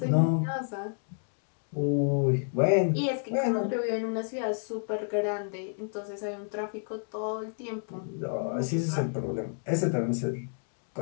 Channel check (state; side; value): silent; right; digital silence